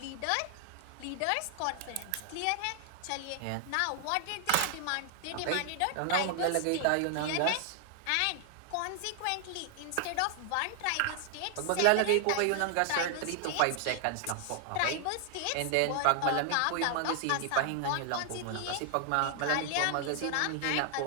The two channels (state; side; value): different; both; correlation 0.00